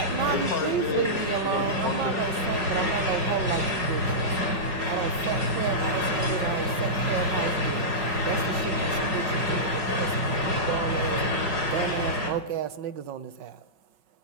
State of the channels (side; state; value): left; late; 5.4 ms